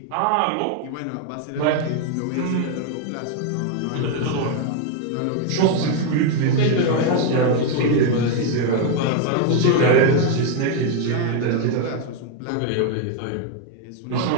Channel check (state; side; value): different; both; correlation 0.01